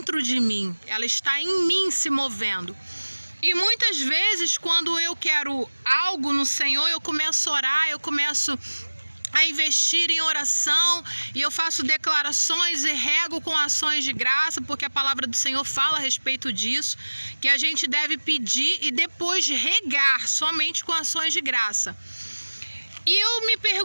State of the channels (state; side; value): inverted; both; correlation -1.00